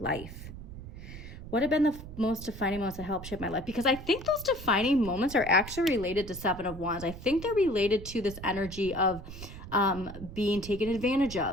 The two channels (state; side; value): noise; right; rumble, 12 dB below the sound